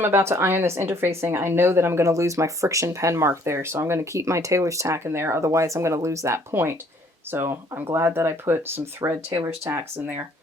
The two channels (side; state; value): both; normal; correlation 0.61